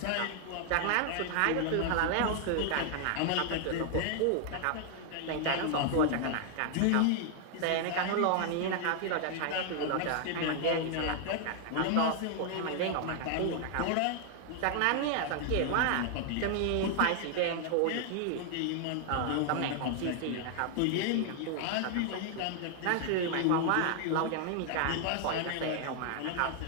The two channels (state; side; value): different; both; correlation 0.00